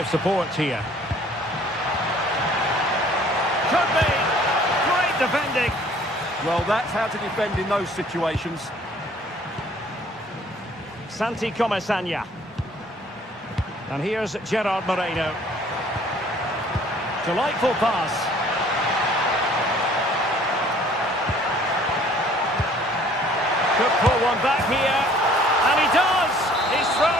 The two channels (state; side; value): normal; both; correlation 0.55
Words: support here. Could be. Great defending. Well, that's how to defend in those situations. Santi Comesaña. And here's Gerard Moreno. Delightful pass. Could pull one back here. And he does. He's